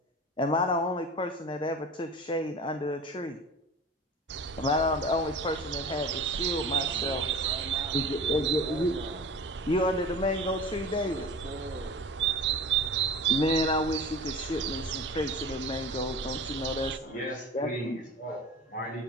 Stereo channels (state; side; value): normal; both; correlation 0.37